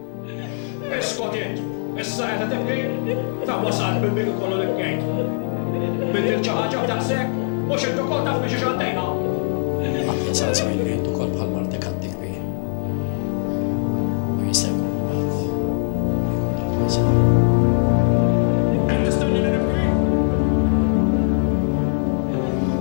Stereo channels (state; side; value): silent; right; 65 dB below the other